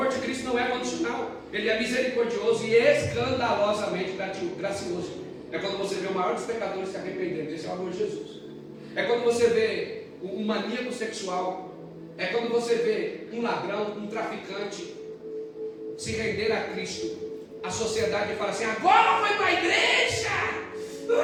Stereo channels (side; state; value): both; identical; correlation 1.00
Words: de Cristo não é condicional. Ele é misericordioso e escandalosamente gracioso. É quando você vê o maior dos pecadores se arrependendo. Esse é o amor de Jesus. É quando você vê um maníaco sexual. É quando você vê um ladrão, um traficante se render a Cristo. A sociedade fala assim: agora foi para a igreja.